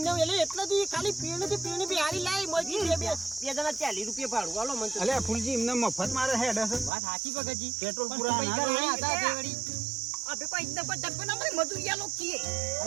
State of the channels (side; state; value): left; drops out; at 6.9 s